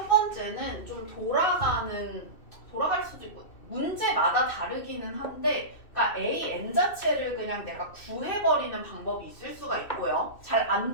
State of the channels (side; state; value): right; late; 2.6 ms